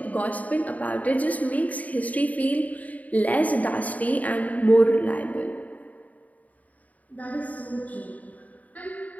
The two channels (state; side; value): late; right; 0.072 ms